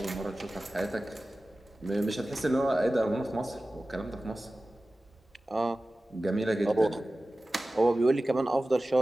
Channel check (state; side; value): normal; both; correlation 0.96